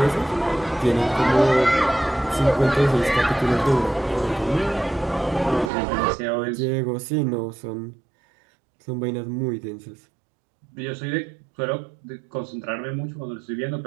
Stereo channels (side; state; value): left; drops out; at 5.7 s